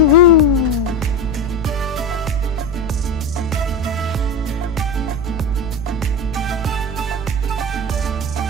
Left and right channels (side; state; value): left; noise; rumble, 16 dB below the sound